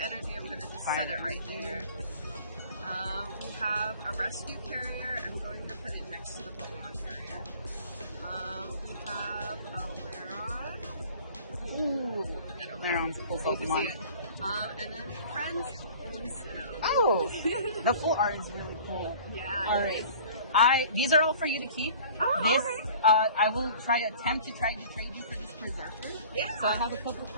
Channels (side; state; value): both; inverted; correlation -0.46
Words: I'm going to just set it right here. We have a rescue carrier. I'm going to put it next to the Pokemon carrier. We have a Laron. Ooh. Laron's a cool Pokemon. And then friends. Oh, the full art is really cool. Yeah. All right. These are all for you to keep. Oh, this, okay. I will attempt to trade you for this Berserker. Yeah. So I have a couple